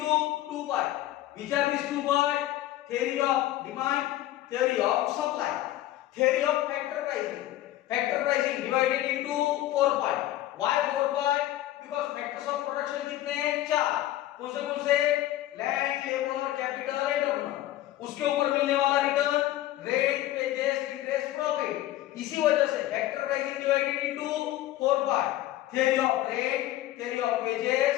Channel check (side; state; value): right; quieter; 14.5 dB